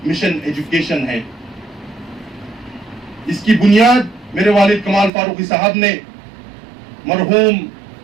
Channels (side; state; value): left; drops out; at 5.1 s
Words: مشن ایجوکیشن ہے. اس کی بنیاد میرے والد کمال فاروقی صاحب نے مرحوم